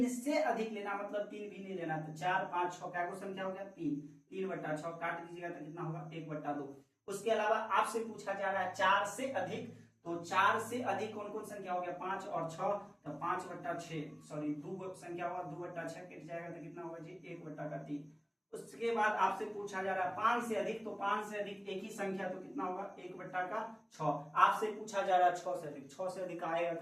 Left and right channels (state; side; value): identical; both; correlation 1.00